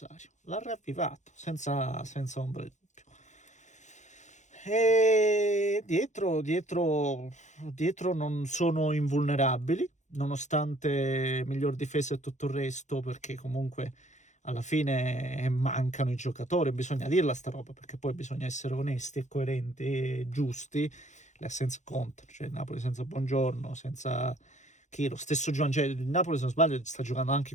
l'ha ravvivato senza ombra di dubbio. E dietro non sono invulnerabili, nonostante miglior difesa e tutto il resto, perché comunque alla fine mancano i giocatori, bisogna dirla sta roba, perché poi bisogna essere onesti e coerenti e giusti. Le assenze contano, cioè il Napoli senza Buongiorno, senza chi, lo stesso Giovanni, cioè il Napoli se non sbaglio sta giocando anche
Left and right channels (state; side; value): late; right; 0.35 ms